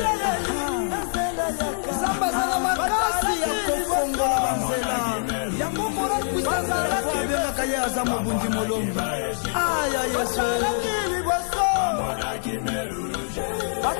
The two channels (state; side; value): silent; right; 62 dB below the other